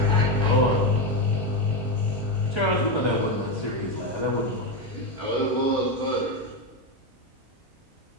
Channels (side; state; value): both; normal; correlation 0.11